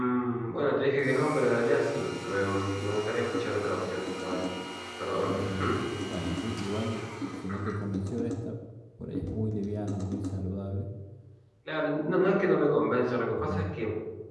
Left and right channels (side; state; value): both; identical; correlation 1.00